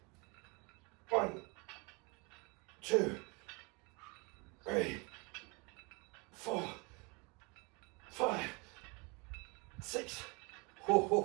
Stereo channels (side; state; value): left; quieter; 29.6 dB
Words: 1, 2, 3, 4, 5, 6,